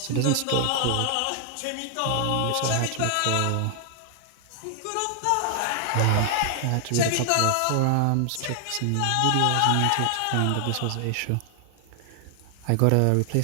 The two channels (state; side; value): different; both; correlation 0.00